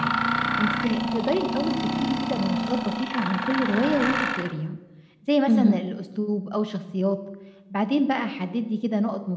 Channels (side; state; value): both; identical; correlation 1.00